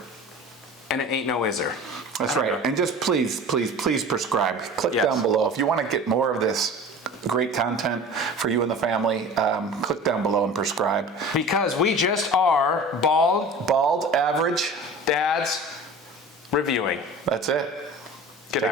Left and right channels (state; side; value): normal; both; correlation 0.38